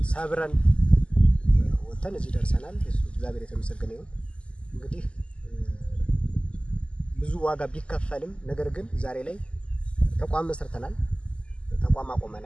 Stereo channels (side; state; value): right; late; 0.054 ms